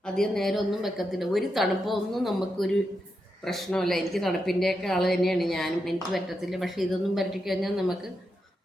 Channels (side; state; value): both; normal; correlation 0.85